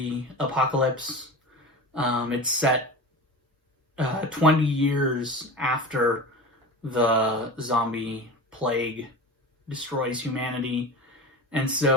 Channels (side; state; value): both; normal; correlation 0.30